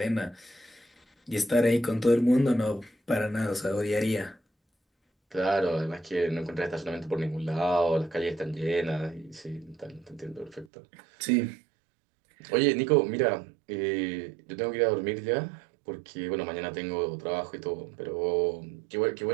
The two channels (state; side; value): drops out; left; at 10.7 s